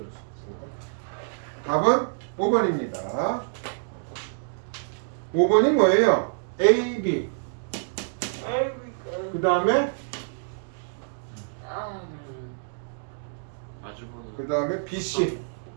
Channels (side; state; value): left; silent; digital silence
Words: 알았어. 답은 5번입니다. 5번이 뭐예요? A, B. 그 다음에 마주보는. 그 다음에 B, C.